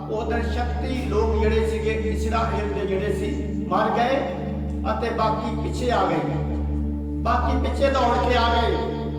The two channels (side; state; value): both; identical; correlation 1.00